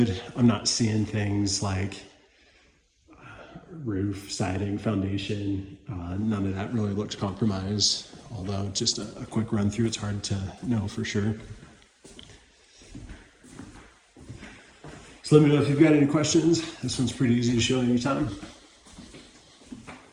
I'm not seeing things like roof, siding, foundation. None of that really looks compromised. Although just a quick run through, it's hard to know for sure. So let me know if you've got any questions. This one's pretty easy to show anytime.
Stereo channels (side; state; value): both; identical; correlation 1.00